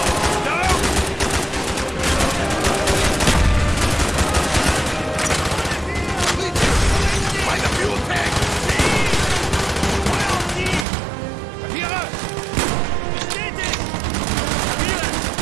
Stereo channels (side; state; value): left; drops out; at 10.9 s